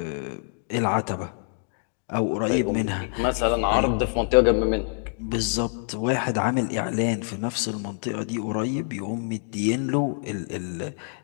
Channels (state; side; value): silent; right; 61 dB below the other